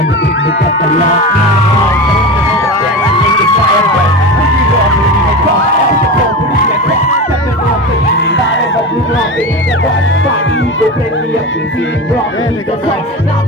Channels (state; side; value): normal; both; correlation 0.26